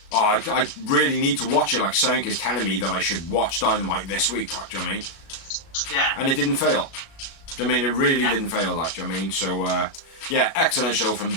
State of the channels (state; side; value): late; right; 36 ms